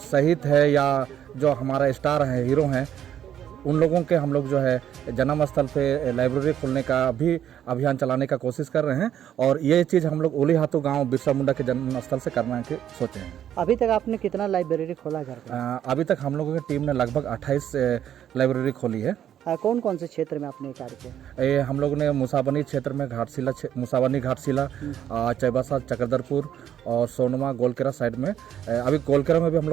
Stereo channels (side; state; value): left; quieter; 10.3 dB